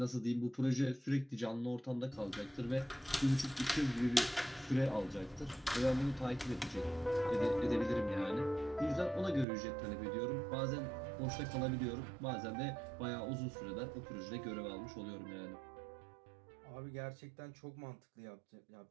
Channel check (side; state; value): left; drops out; at 9.5 s